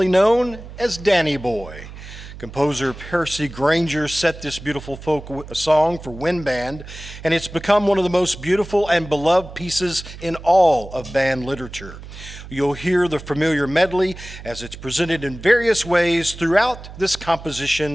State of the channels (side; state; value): right; noise; hum, 14 dB below the sound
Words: known as Danny Boy. Composer Percy Grainger set this beautiful folk song for wind band, and it's become one of the most beautiful and beloved pieces in all of band literature. You'll hear the familiar medley as it's presented in various ways throughout this